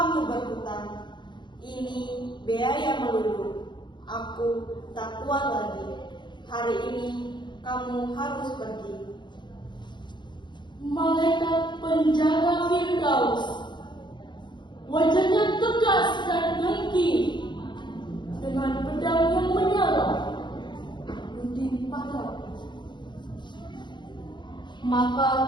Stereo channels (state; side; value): late; right; 0.22 ms